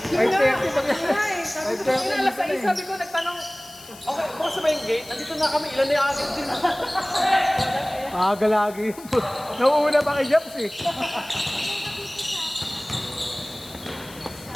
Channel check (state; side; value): noise; left; hiss, 19 dB below the sound